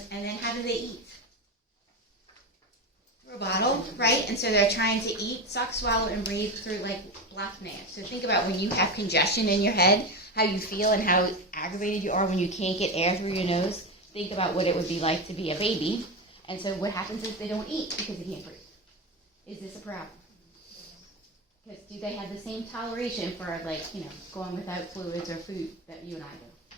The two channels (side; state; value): both; normal; correlation 0.19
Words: and then how do they eat? Through a bottle, right? And so they're trying to eat, suck, swallow, and breathe through like blocked nails. So think about when you have congestion in your head, how you feel and how aggravated you are when you can't get air through your nose. Think about what it would be like to be a baby. And so what happens is they don't eat because they can't breathe. Is this a problem? Because do they have the same toleration for, going without fluids or food that you and I